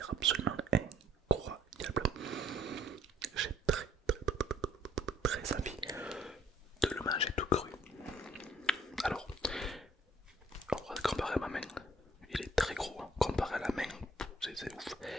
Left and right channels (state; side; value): normal; both; correlation 0.63